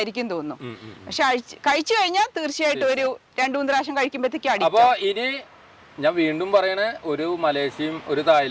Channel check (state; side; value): identical; both; correlation 1.00